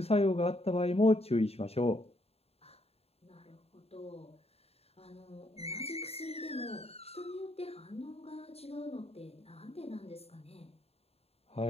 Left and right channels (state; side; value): late; right; 0.29 ms